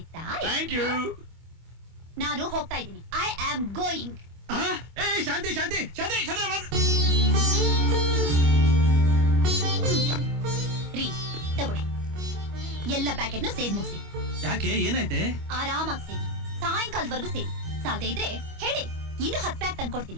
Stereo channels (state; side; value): late; left; 25 ms